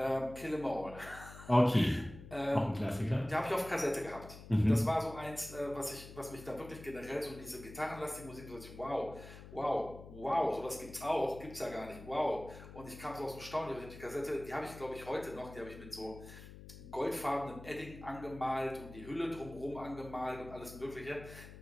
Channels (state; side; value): noise; left; hum, 15 dB below the sound